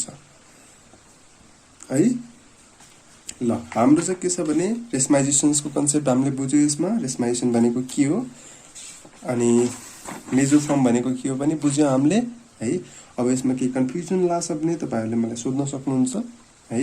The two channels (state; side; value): identical; both; correlation 1.00